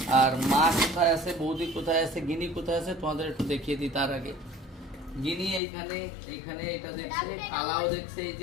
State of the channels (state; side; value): drops out; right; at 5.6 s